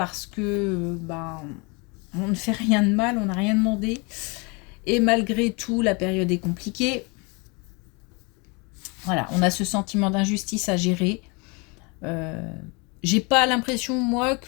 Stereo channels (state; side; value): quieter; right; 30.1 dB